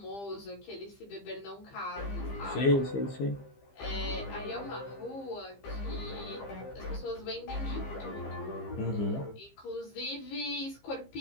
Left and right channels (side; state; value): right; late; 15 ms